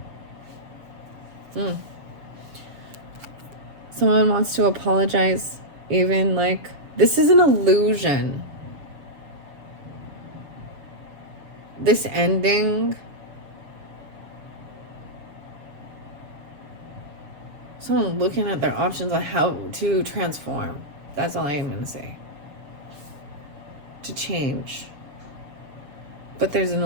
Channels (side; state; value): left; late; 7.2 ms